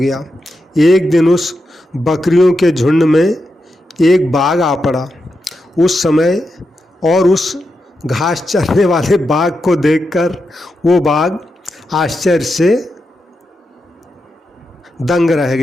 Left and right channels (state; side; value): normal; both; correlation 0.87